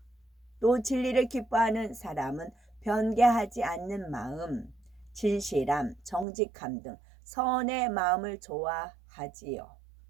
또 진리를 기뻐하는 사람은 변개하지 않는 마음, 진실함, 정직함 등 선의 마음을 좋아하지요.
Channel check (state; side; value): drops out; left; at 6.2 s